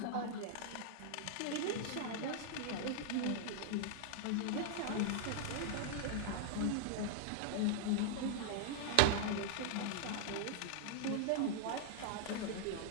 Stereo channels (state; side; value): different; both; correlation -0.01